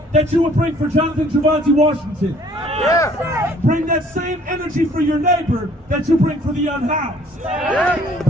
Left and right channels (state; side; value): normal; both; correlation 0.58